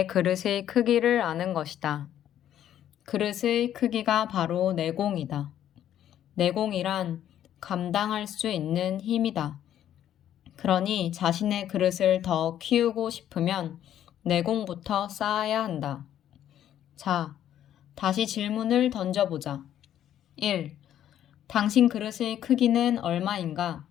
그릇의 크기를 아는 것이다. 그릇의 크기가 바로 내공이다. 내공이란 감당할 수 있는 힘이다. 그러니 자신의 그릇을 더 키우고 싶으면 내공부터 쌓아야 한다. 자, 다시 질문을 던져보자. 1. 당신 그릇의 크기는 얼마인가?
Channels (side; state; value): right; quieter; 11.0 dB